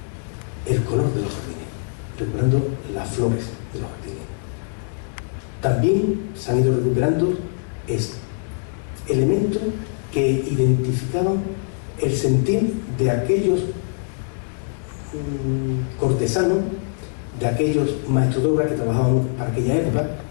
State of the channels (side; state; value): right; silent; digital silence